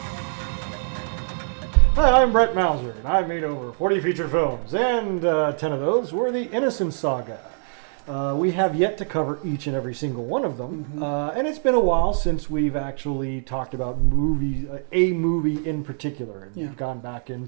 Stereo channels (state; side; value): silent; left; digital silence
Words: Hi, I'm Brett Mauser, and I've made over 40 feature films, and 10 of those were the Innocence Saga. We have yet to cover each and every single one of them, and it's been a while since we've actually talked about movies, a movie in particular, and gone back in